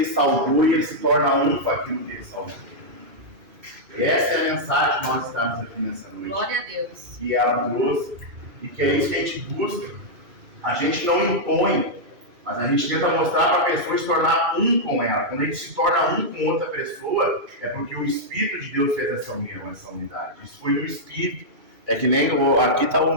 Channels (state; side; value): late; left; 2.6 ms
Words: salgou e ele se torna um com aquilo que ele salgou. Essa é a mensagem que nós estamos aqui nessa noite. Glória a Deus. Que ela trouxe e que é isso que a gente busca. A gente não impõe, mas a gente tenta mostrar para a pessoa se tornar um com ela. Quando a gente se torna um com outra pessoa, é porque o Espírito de Deus fez essa união, essa unidade. Isso foi no Espírito. É que nem aqui está o